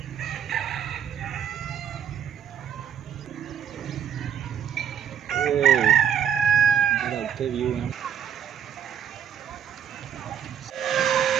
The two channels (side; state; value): left; quieter; 8.7 dB